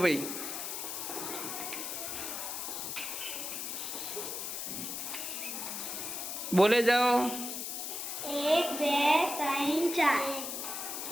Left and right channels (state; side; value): noise; left; hiss, 4 dB below the sound